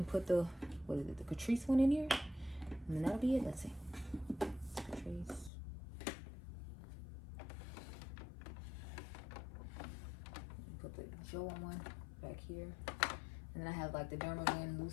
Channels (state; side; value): drops out; right; at 5.5 s